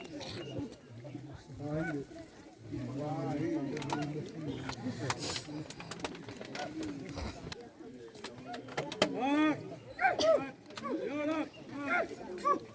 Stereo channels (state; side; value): identical; both; correlation 1.00